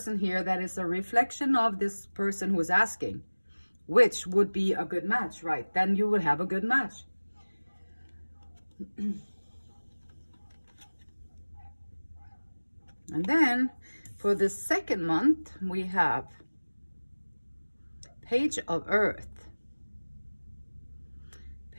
here that is a reflection of this person who is asking, which would be a good match, right? Then you would have a good match. And then for the second month, we have Page of Earth.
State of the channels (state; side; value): inverted; both; correlation -1.00